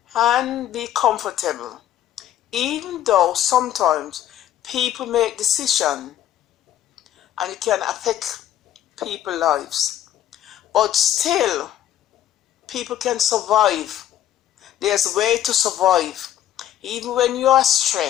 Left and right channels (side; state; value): right; quieter; 11.8 dB